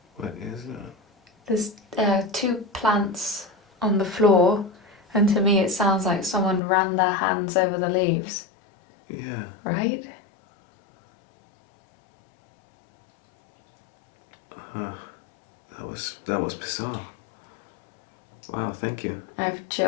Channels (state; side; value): drops out; right; at 6.6 s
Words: What is that? There's 2 plants on the floor, and to me it sounds like someone ran their hands over the leaves. Yeah. Right? That was bizarre. Wow, thank you. I have